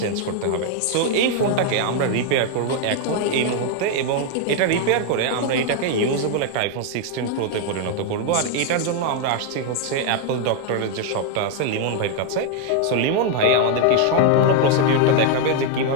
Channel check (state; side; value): different; both; correlation 0.00